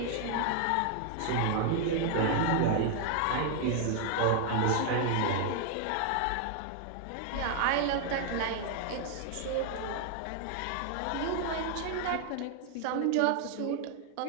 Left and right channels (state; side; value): different; both; correlation 0.00